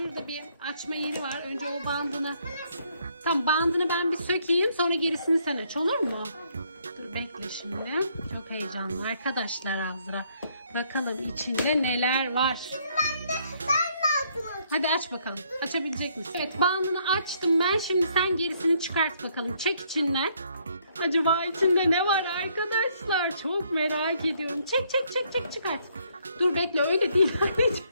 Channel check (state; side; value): inverted; both; correlation -0.68